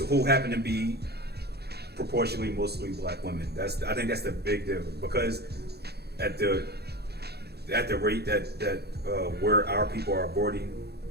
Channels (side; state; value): left; late; 0.47 ms